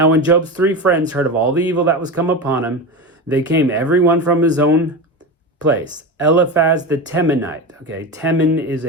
when Job's 3 friends heard of all the evil that was come upon him, they came every one from his own place. Eliphaz the Temanite. Okay, Teman is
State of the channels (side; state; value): both; normal; correlation 0.23